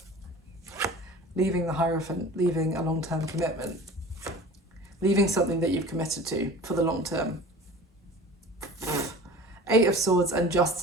Leaving the Hierophant, leaving a long-term commitment. Leaving something that you've committed to for the long term. Eight of Swords and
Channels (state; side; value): normal; both; correlation 0.41